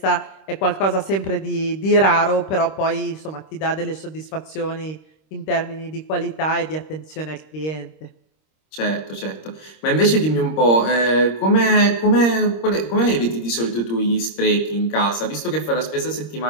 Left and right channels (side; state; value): right; late; 26 ms